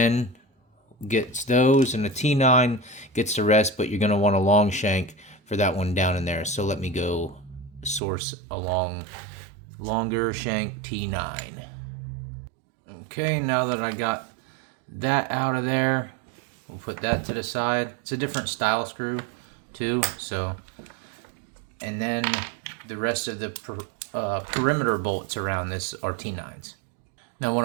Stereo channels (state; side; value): drops out; left; at 8.0 s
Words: gets those, and a T9 gets the rest, but you're going to want a long shank for that one down in there. So let me go source a longer shank T9. Okay, now that I got that out of there, we'll put that to the side. It's a different style screw too, so, and then the rest of the perimeter bolts around this are T9s. Now what